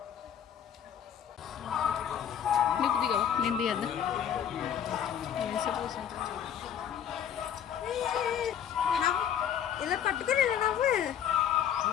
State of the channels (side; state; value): right; quieter; 9.1 dB